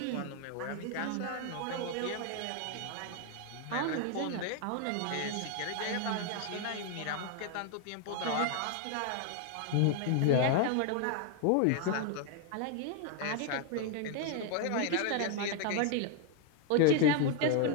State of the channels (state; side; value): different; both; correlation 0.00